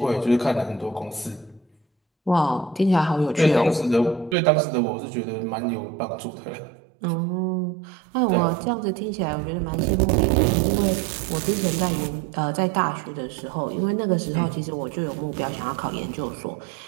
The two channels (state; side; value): drops out; left; at 4.4 s